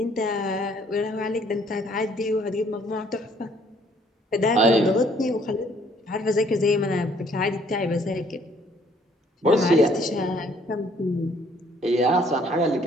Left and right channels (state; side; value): normal; both; correlation 0.62